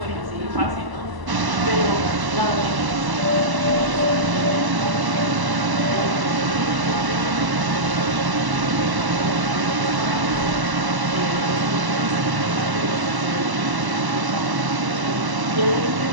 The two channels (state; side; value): late; left; 1.0 ms